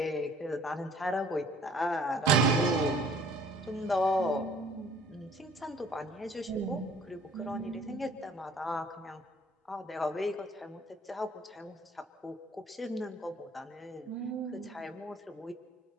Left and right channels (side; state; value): both; normal; correlation 0.55